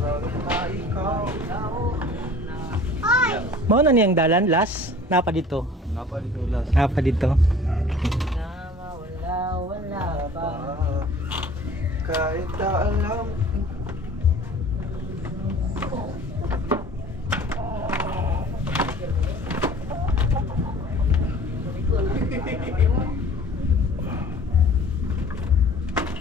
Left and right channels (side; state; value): both; normal; correlation 0.47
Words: Mauna niyang dalan, last? Napa dito? Napa dito last? Napa dito? Wala ba? Kahit na alam.